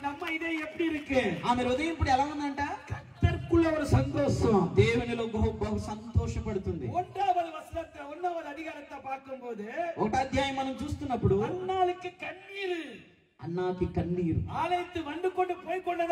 நம்ம இதயம் எப்படி இருக்கு? ఆమె హృదయం ఇప్పుడు ఎలా ఉందంట? கர்த்தருக்குள்ள ஒரு சந்தோஷம். దేవునిలో బహు సంతోషపడుతుంది. 1వ వచనத்தை 1వ అధికారத்தை பார்க்கும்போது 1వ అధ్యాయం మనం చూస్తున్నప్పుడు அன்னாளுக்கு கண்ணீர். అన్నాకి కన్నీరు. ஆலயத்து வந்து கொண்டு போய்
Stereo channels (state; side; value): identical; both; correlation 1.00